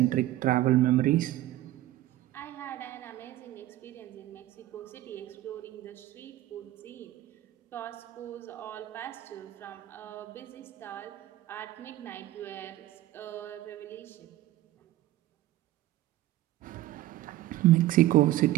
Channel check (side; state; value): left; quieter; 15.3 dB